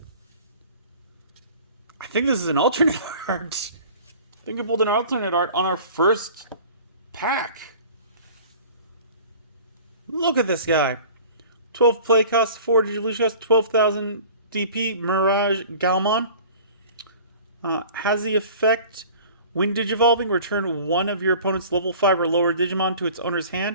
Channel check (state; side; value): inverted; both; correlation -0.44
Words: I think this is an alternate art. I think I pulled an alternate art on our first pack. Look at this guy. 12 play cost, 4 Digivolution cost, 12,000 DP, Mirage Galmon. Has the effect, when Digivolving, return one of your opponent's level 5 or lower Digimon to its owner's